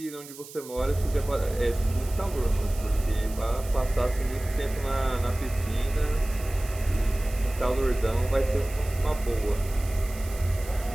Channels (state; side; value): noise; right; hiss, 16 dB below the sound